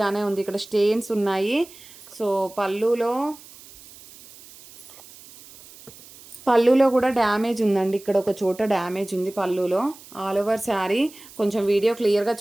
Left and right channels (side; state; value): right; noise; hiss, 20 dB below the sound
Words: ఉంది, ఇక్కడ స్టెయిన్స్ ఉన్నాయి. సో పళ్ళులో కూడా డ్యామేజ్ ఉందండి, ఇక్కడ ఒక చోట డ్యామేజ్ ఉంది పళ్ళులో. ఆల్ ఓవర్ శారీ కొంచెం వీడియో క్లియర్గా